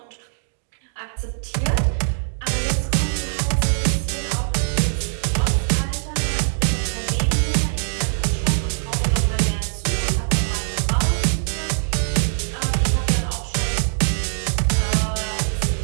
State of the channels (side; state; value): left; silent; digital silence